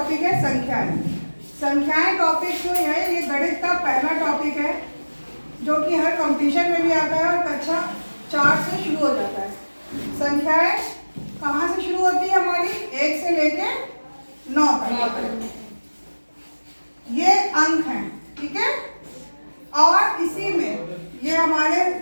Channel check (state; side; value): inverted; both; correlation -1.00